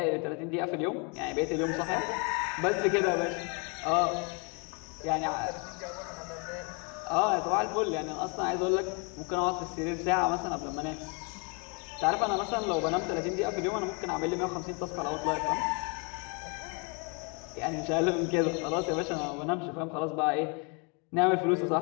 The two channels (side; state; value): right; quieter; 34.1 dB